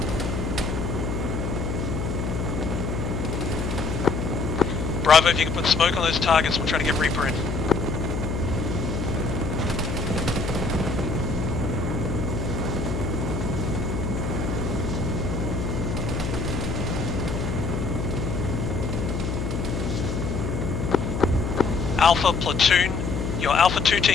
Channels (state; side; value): noise; left; hum, 2 dB below the sound